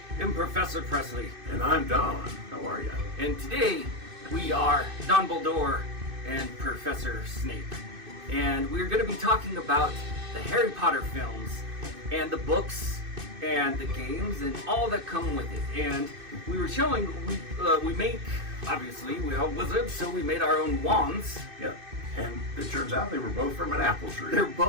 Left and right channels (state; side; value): late; left; 2.6 ms